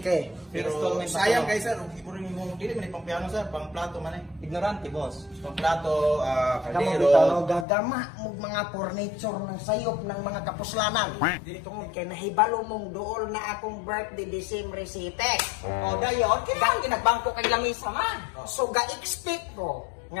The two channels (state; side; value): drops out; right; at 7.7 s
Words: Pero sayang kay sir, ibo rin yung dili man pang piano sir, pang plato man eh. Ignorante, boss. Pang plato, Kamu kaldero. bitaw gagama mo mga furniture ng sayop ng mga kapuslanan. Dili tungod Kaya nahibalo mong dool na akong birthday December 7. O, dayon, kailangan ginagbangko kay lamisa man. So ga-expect ko